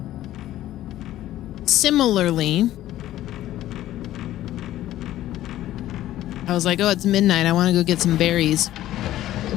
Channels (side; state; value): right; quieter; 13.9 dB